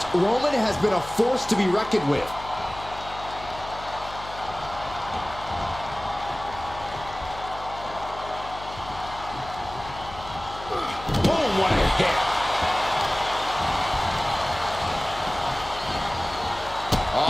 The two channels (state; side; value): noise; left; hum, 15 dB below the sound